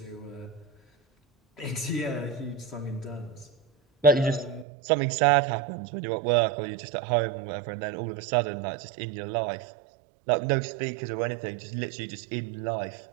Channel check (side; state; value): left; drops out; at 4.7 s